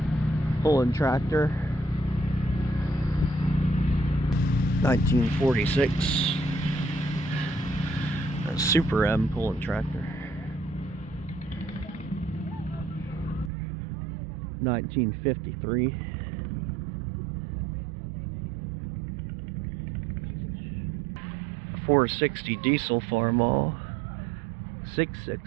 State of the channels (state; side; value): drops out; left; at 13.5 s